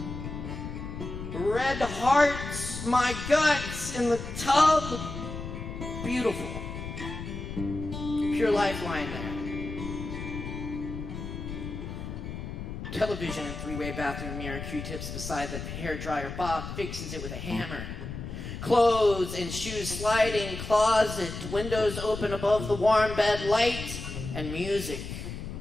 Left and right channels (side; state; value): left; noise; rumble, 8 dB below the sound